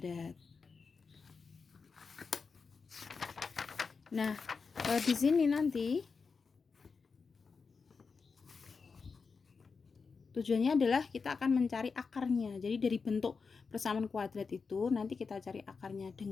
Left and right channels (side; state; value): right; quieter; 5.0 dB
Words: Nah, di sini nanti tujuannya adalah kita akan mencari akarnya. Jadi dari bentuk persamaan kuadrat itu nanti kita cari akarnya